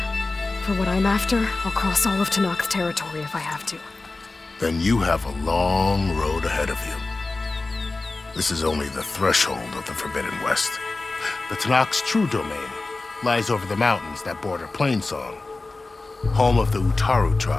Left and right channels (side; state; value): right; quieter; 3.4 dB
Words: For what I'm after, I'll cross all of Tenakth territory if I have to. Then you have a long road ahead of you. This is only the threshold of the Forbidden West. The Tenakth's true domain lies over the mountains that border Plainsong, home of the Utaru